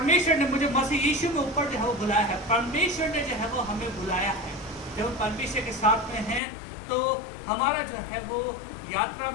ने मुझे मसीह यीशु में ऊपर जो है वो बुलाया है। परमेश्वर ने जो है वो हमें बुलाया है। जब हम परमेश्वर के साथ में हैं तो हमारा जो है वो यात्रा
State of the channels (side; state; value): right; drops out; at 6.4 s